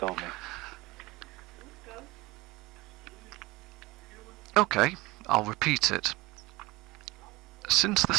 me. Okay, I'll repeat it. Since the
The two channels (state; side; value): quieter; left; 21.4 dB